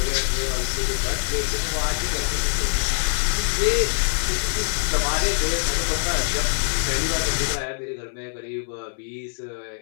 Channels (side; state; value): right; silent; 63 dB below the other